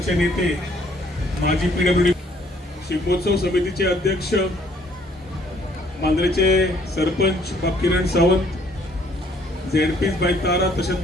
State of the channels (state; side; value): normal; both; correlation 0.63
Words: नेते माजी PWD शिगमोत्सव समितीचे अध्यक्ष मांद्रेचे सरपंच बाब किरण सावंत ZP बाय तारा तशेंच